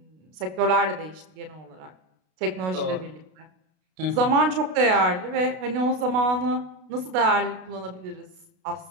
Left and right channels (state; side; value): late; left; 32 ms